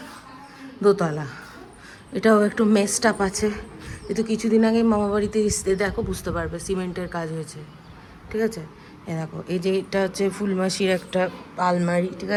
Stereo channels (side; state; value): both; identical; correlation 1.00